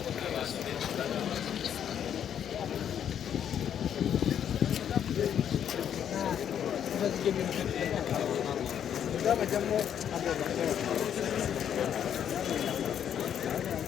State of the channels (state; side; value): quieter; right; 9.2 dB